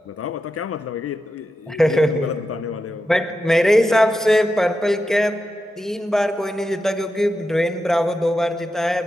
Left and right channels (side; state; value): both; normal; correlation 0.88